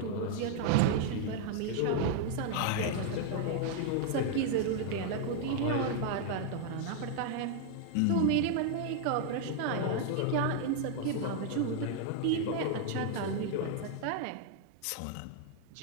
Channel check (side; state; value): both; different; correlation 0.00